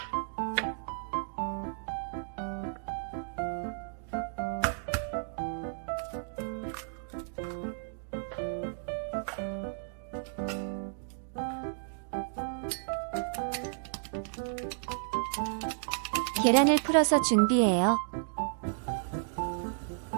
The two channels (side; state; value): left; silent; digital silence